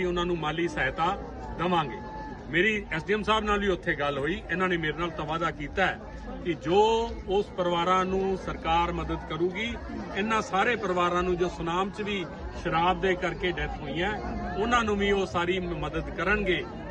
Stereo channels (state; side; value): identical; both; correlation 1.00